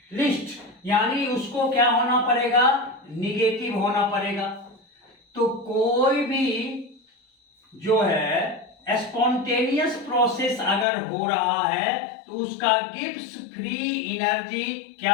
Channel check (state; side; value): drops out; right; at 10.9 s